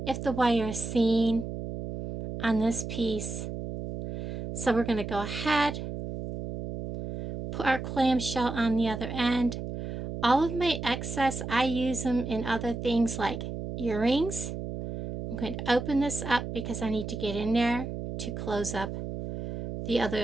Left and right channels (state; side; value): noise; right; hum, 6 dB below the sound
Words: if the wire is seen on this piece. So we're going to go ahead, put our clamshell on the other end. All of my excess, I use them in other things like earrings. I'm going to open this up because I need to get in there to close up the